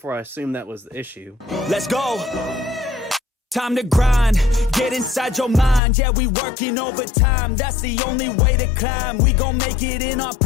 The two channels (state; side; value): drops out; right; at 5.8 s